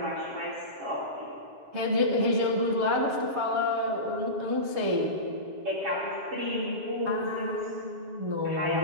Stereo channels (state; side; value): late; left; 7.2 ms